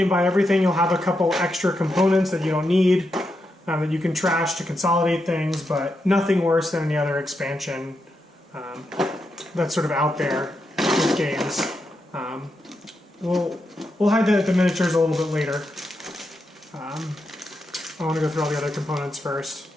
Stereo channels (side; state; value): both; normal; correlation 0.85